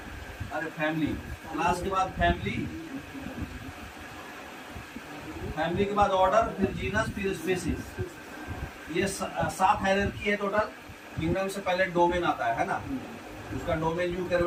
अरे फैमिली, क्लास के बाद फैमिली, फैमिली के बाद ऑर्डर, फिर जीनस, फिर स्पीसीज। ये 7 हायरार्की है टोटल। किंगडम से पहले डोमेन आता है ना, उसका डोमेन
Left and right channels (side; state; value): both; identical; correlation 1.00